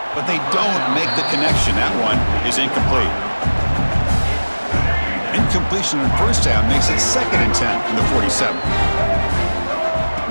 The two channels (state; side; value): inverted; both; correlation -1.00